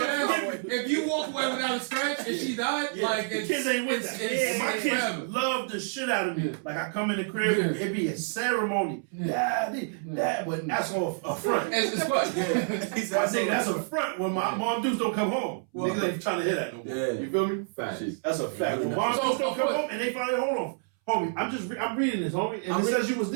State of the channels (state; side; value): silent; left; 59 dB below the other